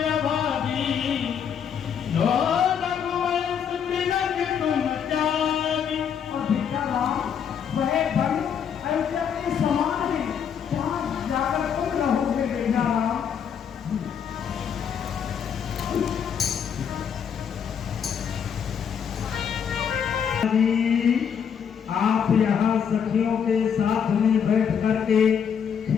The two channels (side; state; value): right; quieter; 7.7 dB